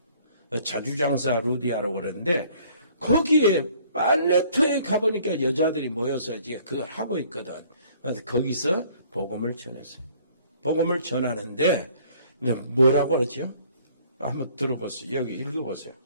자주장사 루디아라고 그러는데 거기에 빨래터에 가보니까 여자들이 모여서 이제 그걸 하고 있거든. 그래서 거기서 복음을 전했어요. 복음을 전하는데 뭐라고 그러죠? 한번 들어보세요. 여기 읽어보세요.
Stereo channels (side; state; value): both; inverted; correlation -0.57